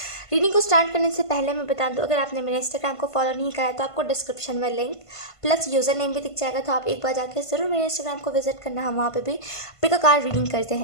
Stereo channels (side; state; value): right; late; 1.5 ms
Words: रीडिंग को स्टार्ट करने से पहले मैं बता दूं, अगर आपने मेरे इंस्टाग्राम को फॉलो नहीं करा है तो आपको डिस्क्रिप्शन में लिंक प्लस यूज़र नेम भी दिख जाएगा, तो आप एक बार जाकर ज़रूर मेरे इंस्टाग्राम को विजिट करना, हम वहाँ पे भी पिक अ कार्ड रीडिंग करते